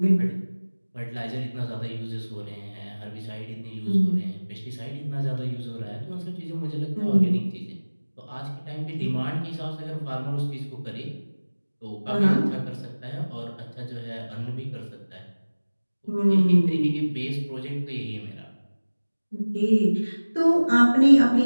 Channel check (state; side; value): inverted; both; correlation -1.00